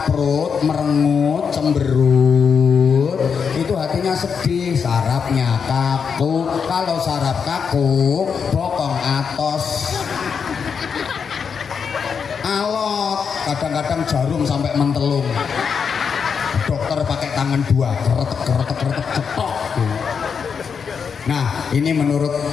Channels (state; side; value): quieter; right; 6.3 dB